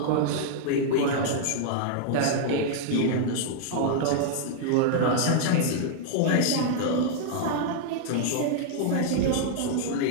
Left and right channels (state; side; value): different; both; correlation -0.01